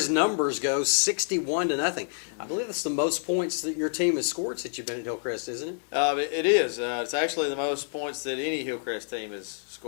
numbers go, 61-0. I believe that's the most points that your team has scored since you've been at Hillcrest, isn't it? It is. It's actually the most points that any Hillcrest team has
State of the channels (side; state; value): right; silent; digital silence